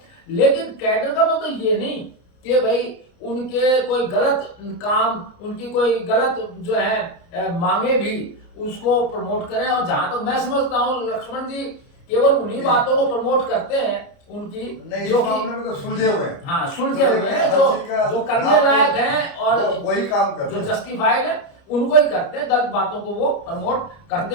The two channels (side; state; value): right; late; 29 ms